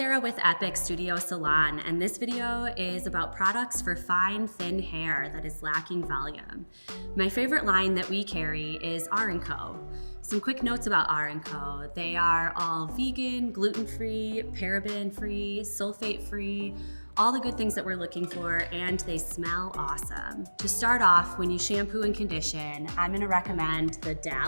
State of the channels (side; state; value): both; inverted; correlation -1.00